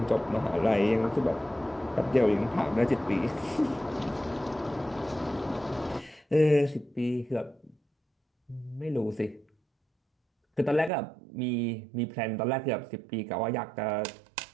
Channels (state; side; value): drops out; left; at 10.9 s